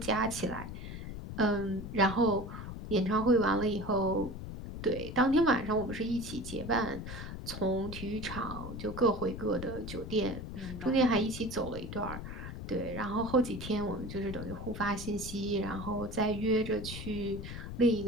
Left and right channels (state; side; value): noise; left; rumble, 8 dB below the sound